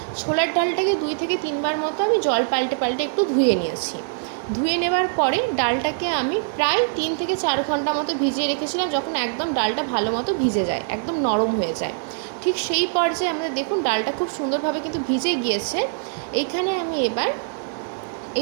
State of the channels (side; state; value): left; silent; digital silence